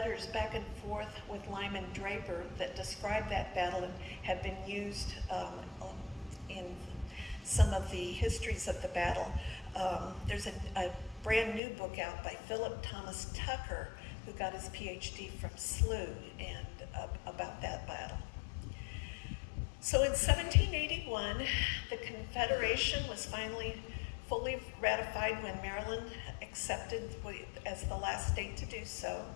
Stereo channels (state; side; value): drops out; right; at 11.6 s